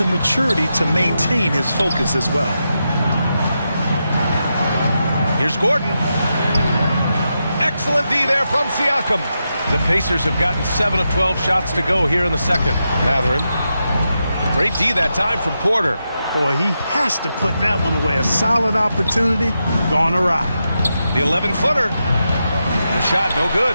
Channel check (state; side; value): inverted; both; correlation -0.87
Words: maturity to maintain his focus as well. Here's Gordon. Excellent D there from Siakam. The Pacers have gotten 7 of 12 shots to go here in the second. Matherin. Great D that time from Porter. Boy, he has to put that one away. A solid opportunity gone awry. The 11-footer. The shot no